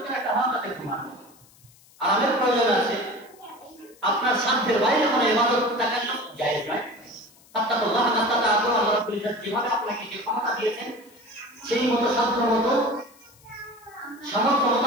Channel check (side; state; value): left; noise; hiss, 27 dB below the sound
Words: একটা হক আছে ঘুমানো, আরামের প্রয়োজন আছে। আপনার সাধ্যের বাইরে কোনো ইবাদত দেখানো জায়েজ নয়। আত্তাকুল্লাহ নাস্তাতাতু, আল্লাহ রাব্বুল ইজ্জত যেভাবে আপনাকে যে ক্ষমতা দিয়েছেন সেই মতো সাধ্য মতো সামর্থ্য মতো